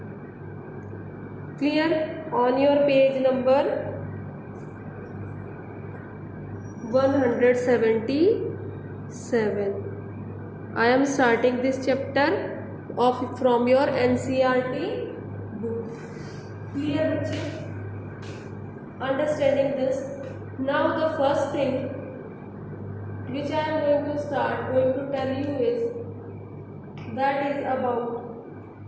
Clear? On your page number 177. I am starting this chapter from your NCERT book. Clear, bachche? Understanding this. Now the first thing which I am going to tell you is that is about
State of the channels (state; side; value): identical; both; correlation 1.00